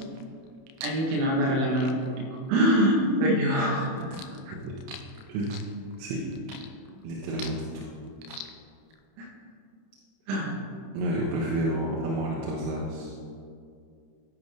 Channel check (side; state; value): left; late; 31 ms